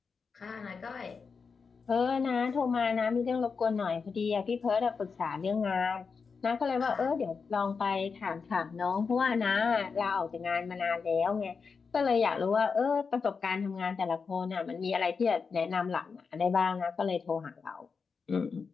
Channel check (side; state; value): right; quieter; 5.3 dB